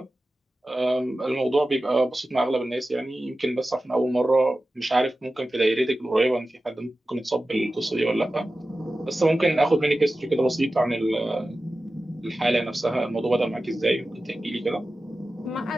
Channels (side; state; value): both; normal; correlation 0.94